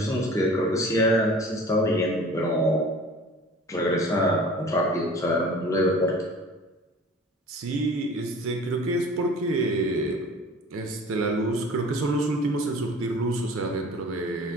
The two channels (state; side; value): normal; both; correlation 0.44